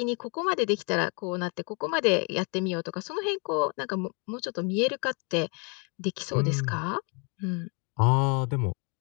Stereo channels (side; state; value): right; quieter; 34.7 dB